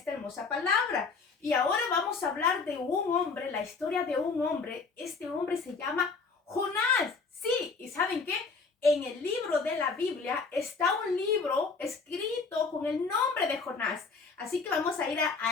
hermosa palabra. Y ahora vamos a hablar de un hombre, la historia de un hombre. Este hombre se llama Jonás. Sí, ¿y saben qué? En el libro de la Biblia está un libro escrito con el nombre de Jonás. Así que vamos a ir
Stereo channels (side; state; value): right; quieter; 4.6 dB